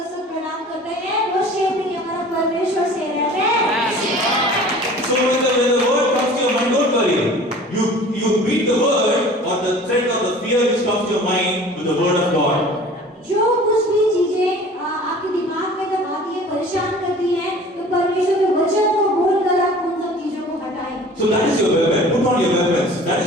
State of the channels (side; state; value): both; normal; correlation 0.45